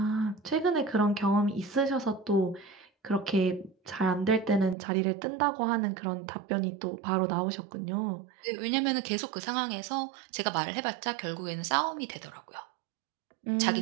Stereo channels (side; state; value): left; drops out; at 4.8 s